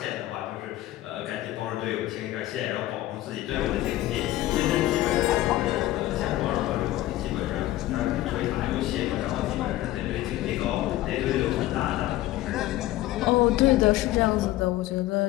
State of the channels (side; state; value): right; quieter; 15.8 dB